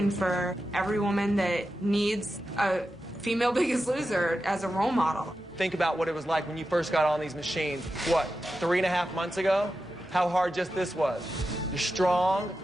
for every woman that needs a female Biggest Loser as a role model. Think about what it was like when you first got on these machines. What, 3.5 months ago? How hard just this was. You're strong,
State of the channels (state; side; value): normal; both; correlation 0.91